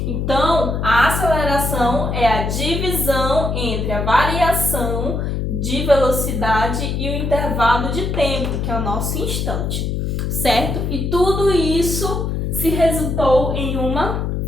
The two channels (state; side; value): noise; left; hum, 1 dB below the sound